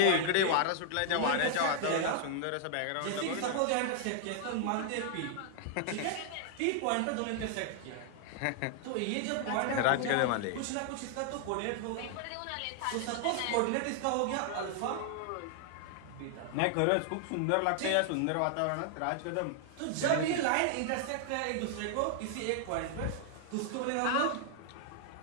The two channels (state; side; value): different; both; correlation 0.00